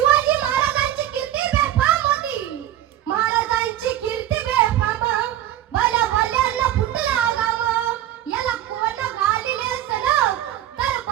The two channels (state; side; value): quieter; left; 12.5 dB